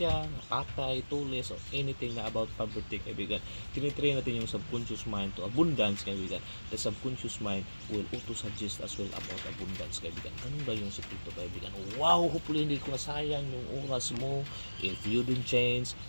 patay, tulis, or anything na about poverty, kaibigan. Tinitrain natin yung subconscious mind to abundance, kaibigan. The subconscious mind will auto-suggest as well about abundance, kaibigan. Ganun ba yung sikreto, kaibigan? Wow, hopefully hindi ko nasayang yung oras mo. If you don't change,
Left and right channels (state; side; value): inverted; both; correlation -1.00